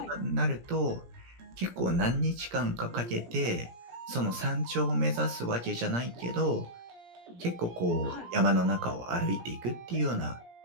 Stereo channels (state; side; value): late; left; 17 ms